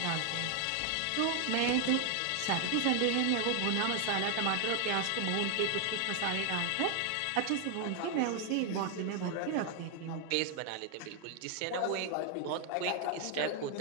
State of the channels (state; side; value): different; both; correlation 0.00